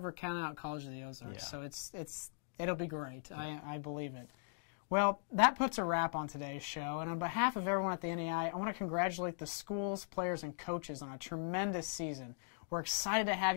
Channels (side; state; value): right; silent; digital silence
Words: count out College of the Ozarks. Yeah. So it'll be great. I believe it. Well, that puts a wrap on today's show, and on behalf of everyone at the NAIA, I want to congratulate the schools, players, and coaches on a tremendous season. We're excited to have